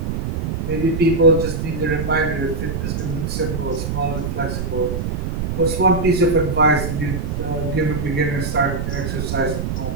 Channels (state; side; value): noise; right; rumble, 2 dB below the sound